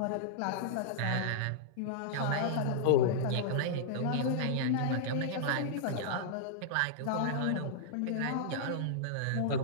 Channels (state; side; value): different; both; correlation -0.02